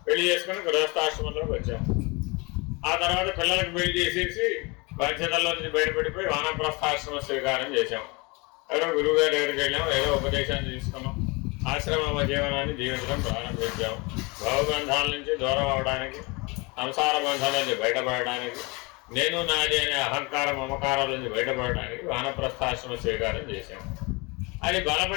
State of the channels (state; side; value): quieter; right; 27.2 dB